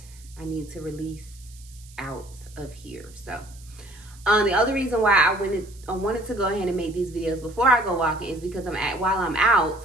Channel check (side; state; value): right; noise; hiss, 23 dB below the sound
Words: I need to release out of here. So the other reason why I wanted to go ahead and make these videos before I go walking is because while I'm